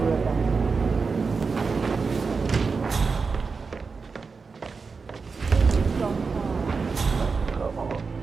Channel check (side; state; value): left; quieter; 4.8 dB